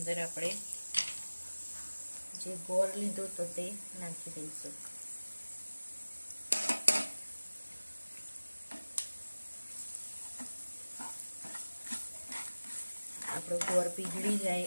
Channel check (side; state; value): both; inverted; correlation -1.00